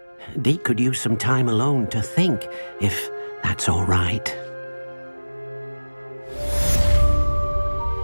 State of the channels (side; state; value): both; inverted; correlation -1.00